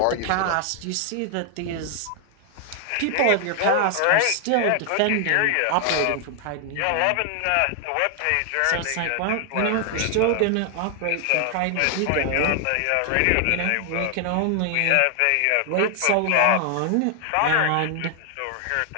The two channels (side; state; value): both; different; correlation 0.00